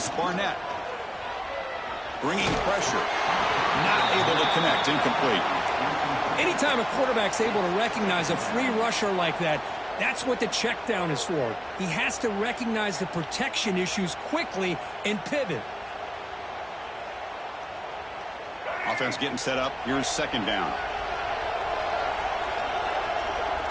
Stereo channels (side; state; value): both; identical; correlation 1.00